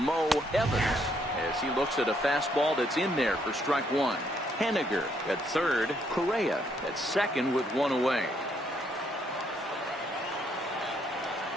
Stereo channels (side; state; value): both; normal; correlation 0.71